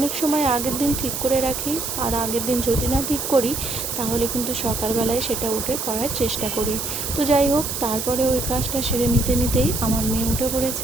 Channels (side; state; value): right; noise; hiss, 4 dB below the sound